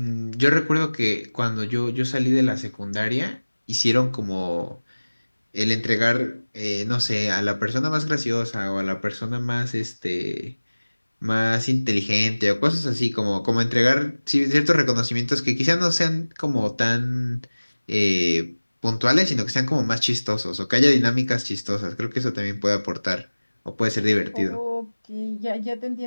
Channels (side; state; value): both; inverted; correlation -1.00